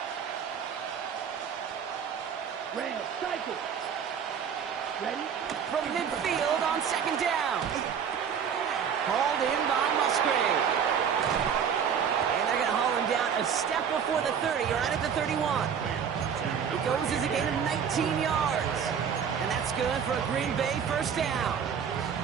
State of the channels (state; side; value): quieter; left; 7.5 dB